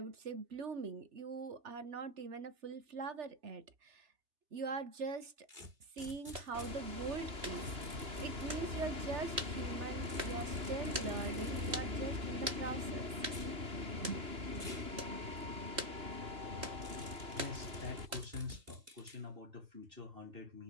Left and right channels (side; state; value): left; late; 3.0 ms